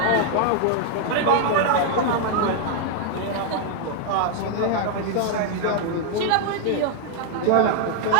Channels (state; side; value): different; both; correlation 0.00